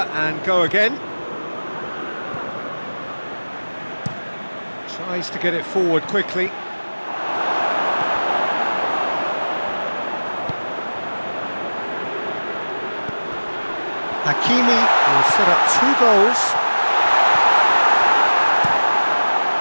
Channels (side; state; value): both; inverted; correlation -1.00